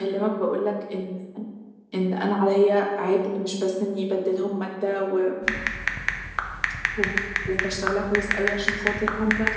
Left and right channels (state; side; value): identical; both; correlation 1.00